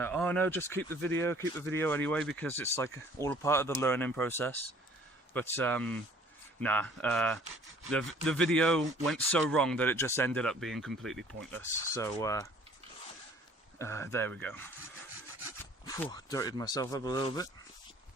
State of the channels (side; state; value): both; normal; correlation 0.54